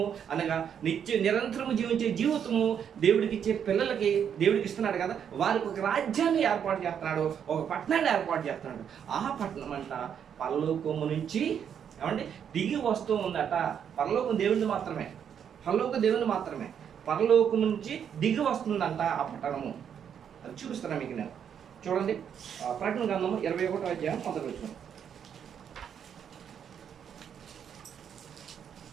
అనగా నిరంతరము జీవించే జీవితము దేవుడికి ఇచ్చే పిల్లలకి దేవుడికి ఇస్తున్నాడు కదా. వారికి ఒక రాజ్యాన్ని ఏర్పాటు చేస్తున్నాడు, ఒక పట్టణాన్ని ఏర్పాటు చేస్తున్నాడు. ఆ పట్టణం అంట పరలోకము నుంచి ఏమంటే దిగి వస్తూ ఉందట. పరలోకం దేవుని మాత్రమే, పరలోకం నుంచి దిగి వస్తుందంట ఆ పట్టణము. అది చూపిస్తాను మీకు నేను. చూడండి, ప్రకటన గ్రంథము 21వ అధ్యాయం 1వ వచనం.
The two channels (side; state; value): left; quieter; 8.3 dB